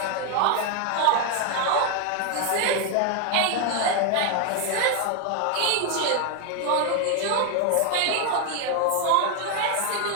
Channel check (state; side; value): different; both; correlation 0.01